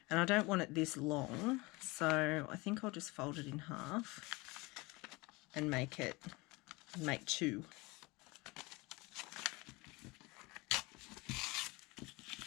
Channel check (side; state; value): right; quieter; 24.2 dB